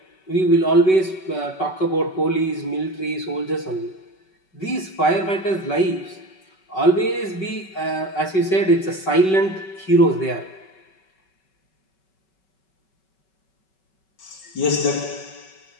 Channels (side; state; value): right; late; 5.3 ms